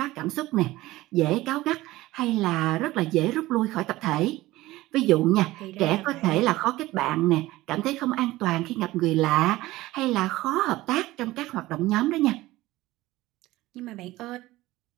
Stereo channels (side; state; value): left; quieter; 17.8 dB